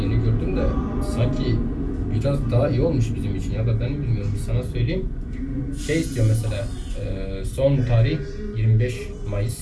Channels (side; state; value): both; identical; correlation 1.00